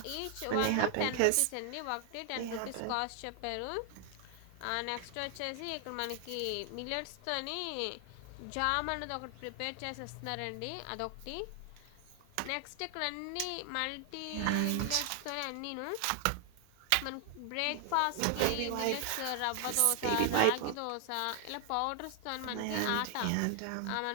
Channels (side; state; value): both; different; correlation 0.00